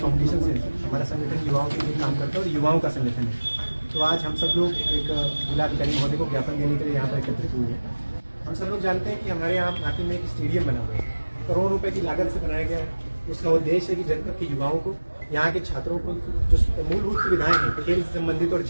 से, हमारा संगठन युवाओं के लिए काम करता है और युवाओं का संगठन है। तो आज हम सब लोग एक जिलाधिकारी महोदय को ज्ञापन देने के लिए यहाँ पर एकत्रित हुए हैं। हम सब लोग जानते हैं कि हमारे यहाँ नाटी में एक स्टेडियम बना हुआ है, करोड़ों रुपए की लागत से बनाया गया है। उसका उद्देश्य है कि जनपद के युवाओं को, यहाँ के छात्रों को जो मूलभूत सुविधाएं हैं खेल से संबंधित और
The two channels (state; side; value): inverted; both; correlation -1.00